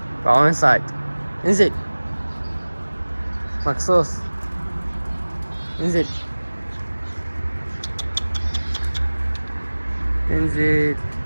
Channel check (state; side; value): inverted; both; correlation -1.00